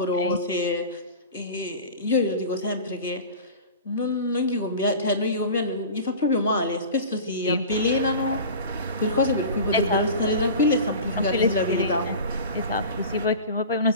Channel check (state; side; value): inverted; both; correlation -0.35